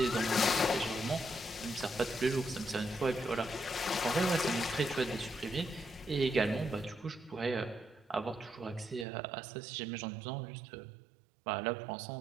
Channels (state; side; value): drops out; left; at 9.1 s